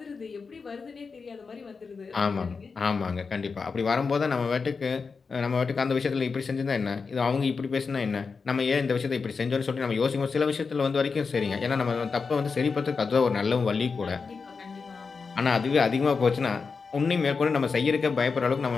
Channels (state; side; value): quieter; right; 4.9 dB